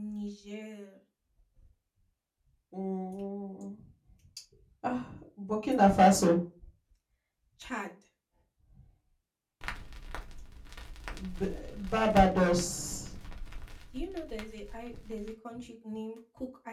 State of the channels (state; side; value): identical; both; correlation 1.00